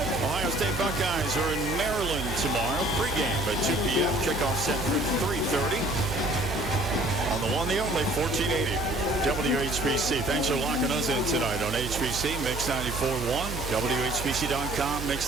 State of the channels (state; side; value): noise; right; hum, 8 dB below the sound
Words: Ohio State Buckeyes are in Maryland tomorrow. Pregame at 2 p.m. Kickoff set for 3:30. On the one, the only, 1480 WHBC. Thanks for locking us in tonight on HBC, Mix 94.1, WHBC.com,